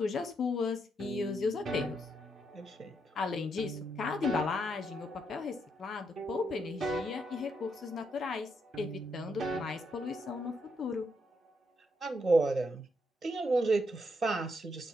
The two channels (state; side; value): normal; both; correlation 0.78